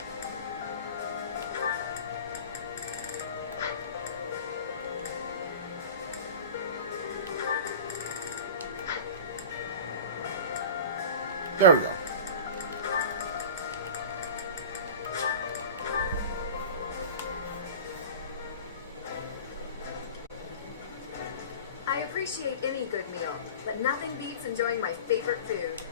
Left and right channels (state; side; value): inverted; both; correlation -0.36